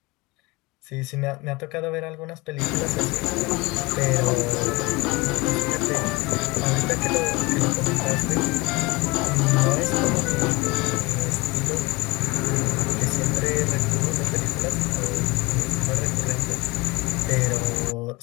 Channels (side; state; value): right; quieter; 23.9 dB